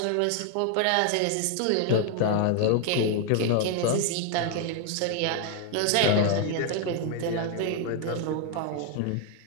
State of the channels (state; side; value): different; both; correlation 0.00